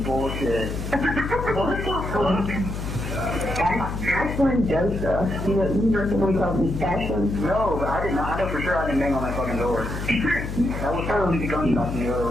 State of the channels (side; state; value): left; noise; hum, 5 dB below the sound